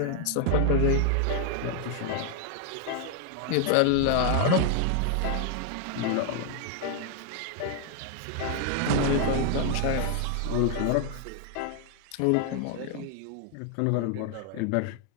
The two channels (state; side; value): different; both; correlation 0.00